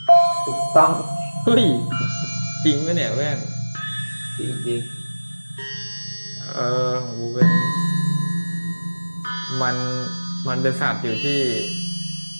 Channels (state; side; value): inverted; both; correlation -1.00